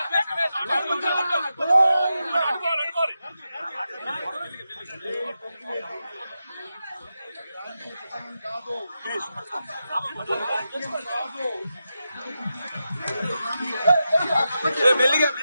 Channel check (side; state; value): both; inverted; correlation -0.89